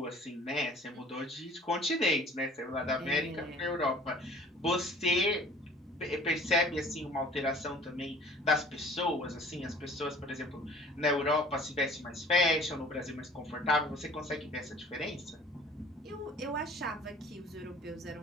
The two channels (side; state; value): both; normal; correlation 0.50